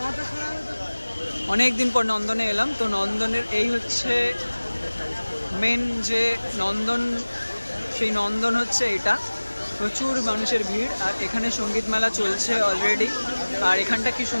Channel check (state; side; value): inverted; both; correlation -1.00